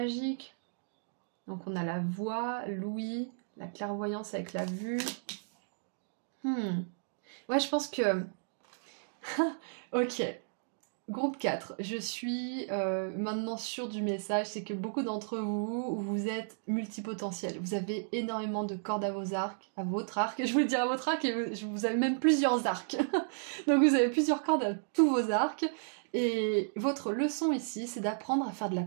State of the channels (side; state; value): left; silent; digital silence